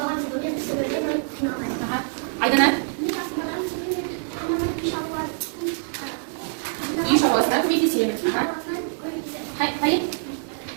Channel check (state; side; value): silent; left; 62 dB below the other